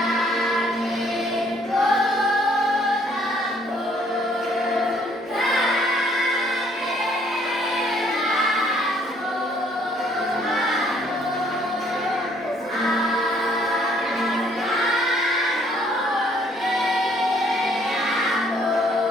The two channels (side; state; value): both; normal; correlation 0.63